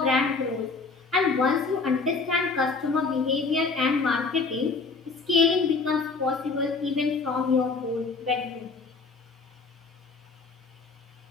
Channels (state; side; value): quieter; right; 4.3 dB